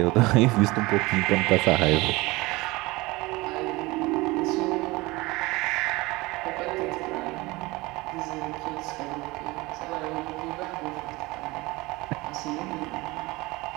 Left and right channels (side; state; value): left; quieter; 22.0 dB